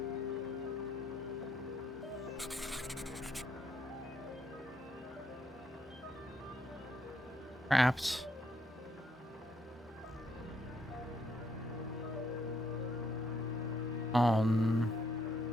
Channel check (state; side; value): normal; both; correlation 0.73